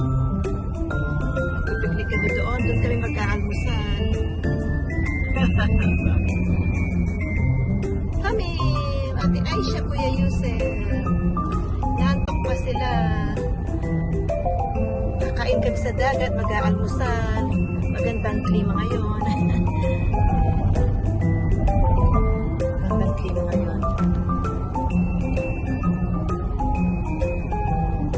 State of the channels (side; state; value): both; identical; correlation 1.00